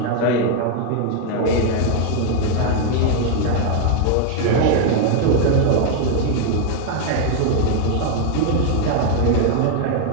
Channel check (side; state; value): both; different; correlation 0.00